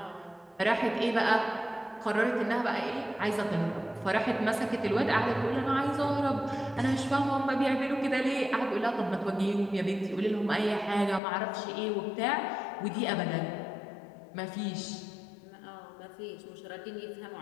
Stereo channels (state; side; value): drops out; right; at 11.2 s